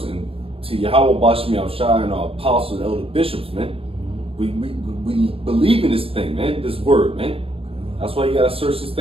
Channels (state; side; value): late; left; 0.27 ms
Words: and to Yahweh Bashmi Al-Shai and our apostles and elder bishops, man. We believe in this thing, man. This word, man. That's why you gotta search this